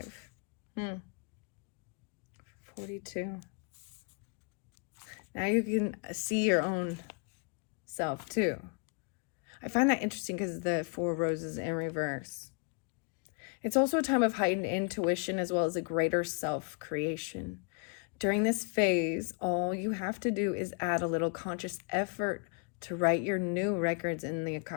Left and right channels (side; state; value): right; quieter; 35.3 dB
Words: 42. Now you can see your own self too. I find that interesting because the 4 roses in reverse. It's also a time of heightened intuition as well as a greater self-creation. During this phase, all you have to do is add a little conscious effort to write your new records in the